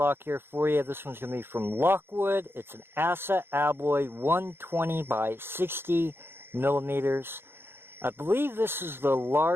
here for you. This one's going to be from Lockwood. It's an Asa Abloy 120 by 60 millimeters. I believe this is the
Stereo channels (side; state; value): left; late; 0.11 ms